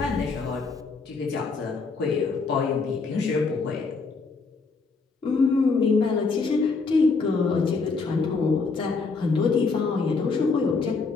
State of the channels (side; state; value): right; quieter; 4.4 dB